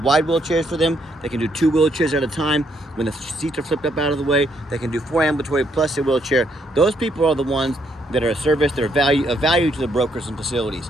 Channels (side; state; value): both; normal; correlation 0.73